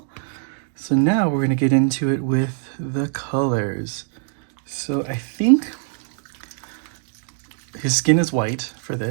So now we're going to get into it with the colors. So I think his skin is white for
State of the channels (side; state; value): left; silent; digital silence